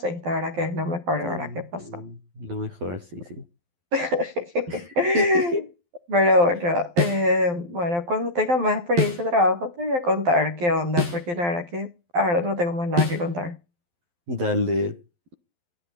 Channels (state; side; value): late; left; 12 ms